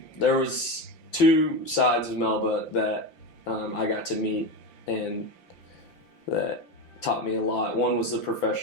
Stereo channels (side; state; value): right; late; 5.8 ms